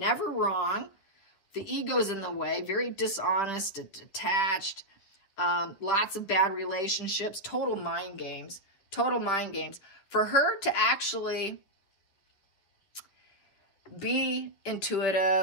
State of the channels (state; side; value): late; right; 10 ms